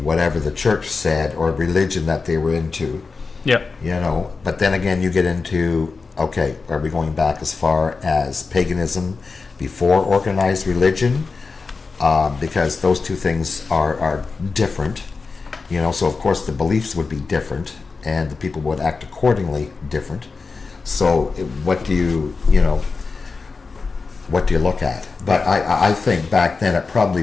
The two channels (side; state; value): right; quieter; 4.4 dB